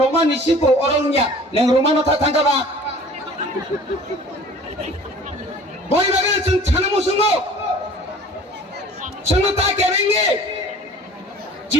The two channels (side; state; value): both; normal; correlation 0.47